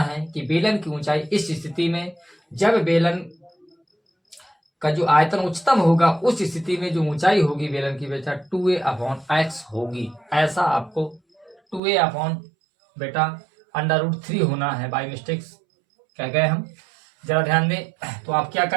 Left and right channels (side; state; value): left; drops out; at 11.8 s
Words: कि बेलन की ऊंचाई इस स्थिति में, जब बेलन का जो आयतन उच्चतम होगा उस स्थिति में जो ऊंचाई होगी बेलन की बेटा 2a/x होगी। ऐसा आपको 2a/ बेटा √3 होना है, बाई मिस्टेक्स कह गए हम, जरा ध्यान दें। तो आप क्या